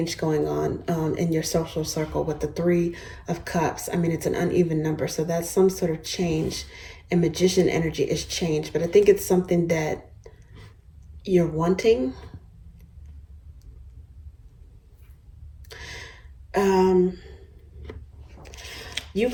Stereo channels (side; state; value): both; identical; correlation 1.00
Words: going on in your social circle with the Three of Cups. I mean, it's an uneven number, so that's some sort of change. And Magician energy is change, but I think it's something that you're wanting. You